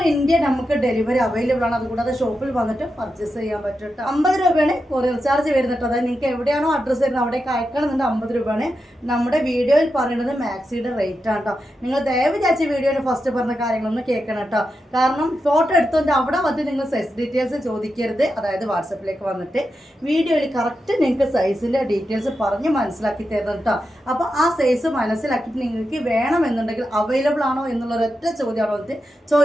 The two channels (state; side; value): normal; both; correlation 0.88